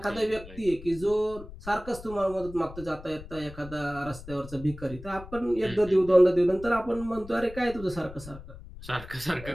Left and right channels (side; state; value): left; noise; rumble, 15 dB below the sound